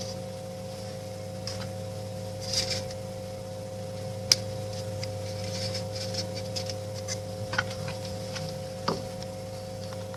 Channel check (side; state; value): both; identical; correlation 1.00